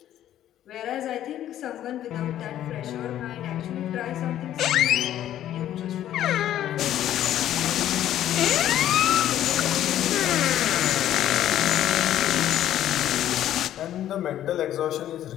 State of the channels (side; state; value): right; quieter; 11.9 dB